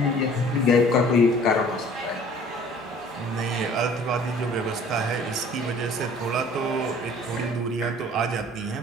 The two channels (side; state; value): both; normal; correlation 0.51